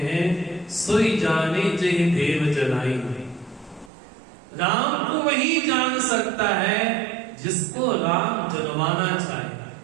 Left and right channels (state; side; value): drops out; left; at 3.9 s